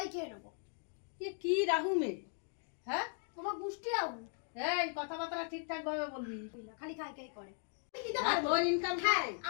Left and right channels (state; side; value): silent; right; 53 dB below the other